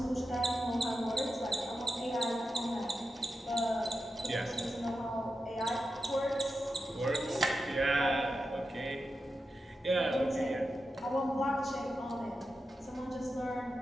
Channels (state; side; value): normal; both; correlation 0.89